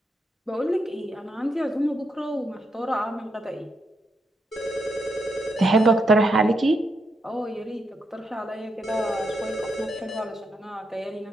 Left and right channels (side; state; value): both; normal; correlation 0.81